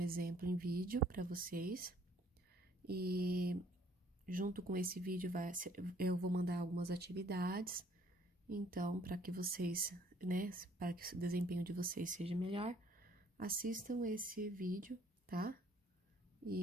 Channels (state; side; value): normal; both; correlation 0.60